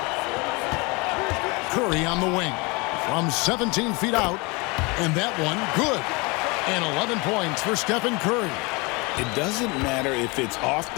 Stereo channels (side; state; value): right; quieter; 27.4 dB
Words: Curry on the wing from 17 feet out. And that one good. And 11 points for Stephen Curry. It doesn't matter if it's off